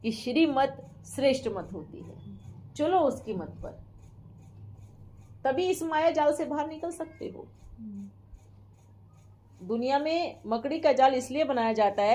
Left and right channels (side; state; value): both; identical; correlation 1.00